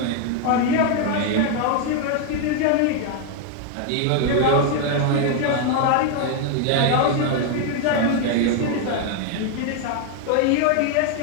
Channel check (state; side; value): different; both; correlation 0.01